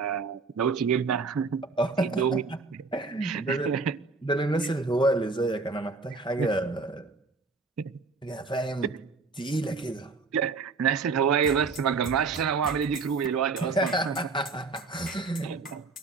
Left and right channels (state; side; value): quieter; left; 4.3 dB